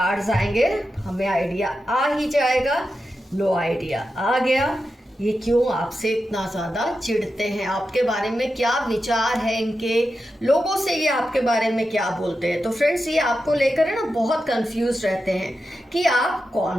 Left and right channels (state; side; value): normal; both; correlation 0.90